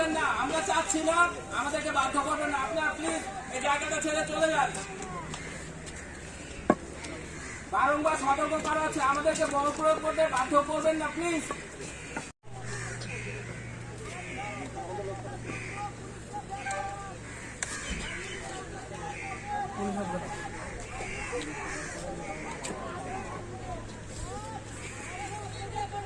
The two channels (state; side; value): identical; both; correlation 1.00